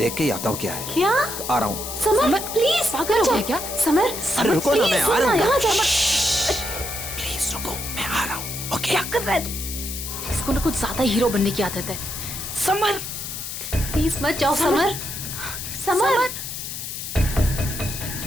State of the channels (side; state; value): left; noise; hiss, 7 dB below the sound